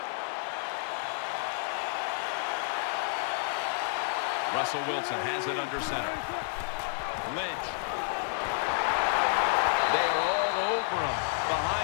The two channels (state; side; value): silent; right; digital silence